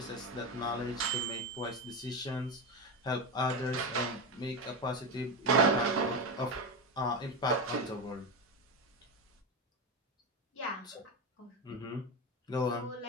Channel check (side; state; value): both; normal; correlation 0.16